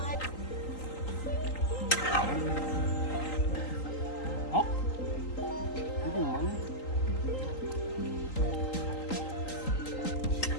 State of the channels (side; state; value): right; late; 3.8 ms